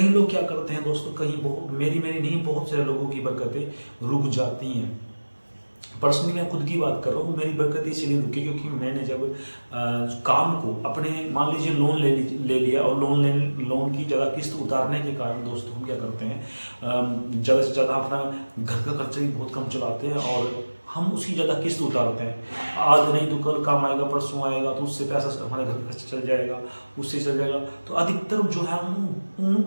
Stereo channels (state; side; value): inverted; both; correlation -1.00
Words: लोग क्या करते हैं दोस्तों, मेरी नहीं, बहुत सारे लोगों की बरकतें रुक जाती हैं। पर्सनली मैं खुद की बात कर रहा हूँ, मेरी बरकत इसीलिए रुकी क्योंकि मैंने जब काम को अपने मान लीजिए लोन ले लिया, और लोन की ज़्यादा किस्त उतारने के कारण दोस्तों हम क्या करते हैं, ज़्यादा से ज़्यादा अपना घर का खर्चा भी बहुत कम चलाते हैं और हम उसकी ज़्यादा किस्त उतारते हैं। आज नहीं तो कल काम आएगा, परसों आएगा, तो उससे पैसा हमारे घर का खर्चा चल जाएगा, उससे चल जाएगा। तो अधिकतर जो है हम उन